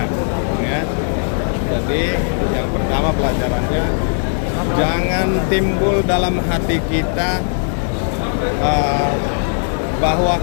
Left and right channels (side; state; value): right; silent; 67 dB below the other